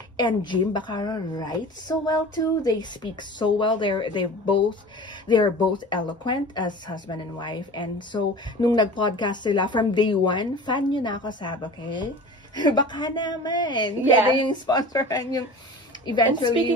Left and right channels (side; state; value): both; normal; correlation 0.37